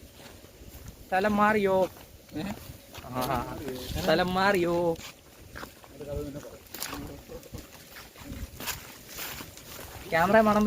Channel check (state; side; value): identical; both; correlation 1.00